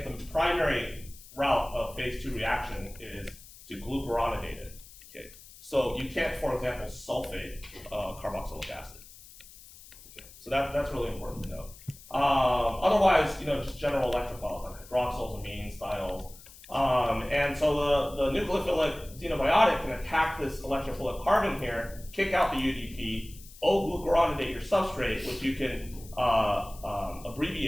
the primary route of phase 2 reaction is to glucuronidate it. Okay. So you can't, for example, sulfate carboxylic acid. Okay. So that's really important to know. Otherwise, just general electrophiles like hydroxyls, amines, thiols. And so the nucleophilic xenobiotic can attack this electrophilic carbon here, kick out the UDP, O-glucuronidate your substrate, which you can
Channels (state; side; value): noise; left; hiss, 20 dB below the sound